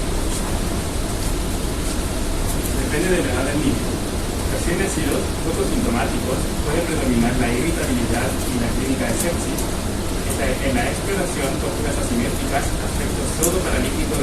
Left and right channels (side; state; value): both; identical; correlation 1.00